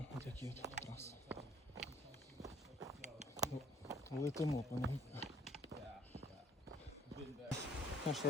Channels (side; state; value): both; normal; correlation 0.59